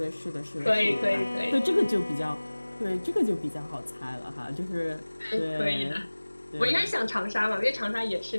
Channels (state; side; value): inverted; both; correlation -1.00